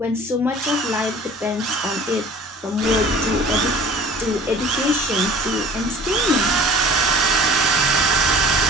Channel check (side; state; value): both; normal; correlation 0.46